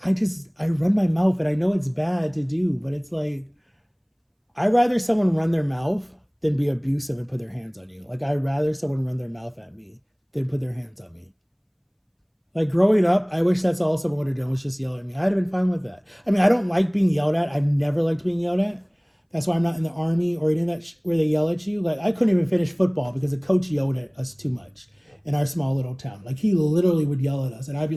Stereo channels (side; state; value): both; identical; correlation 1.00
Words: I run my mouth, and I know it's bad to do, but it's like, I'd rather someone run their mouth than be abusive and put their hands on you. Like, I'd rather someone run their mouth at me than put their hands on me. Like, growing up, I wish that's all someone would have done, was just yell at me. I'd have been fine with that. I mean, I don't like being yelled at. I've never liked being yelled at. That's why I'm not in the army or in that where they yell at you. Like, I couldn't even finish football because the coach yelled at us too much in our small little town. Like, he literally would yell at us, and I'd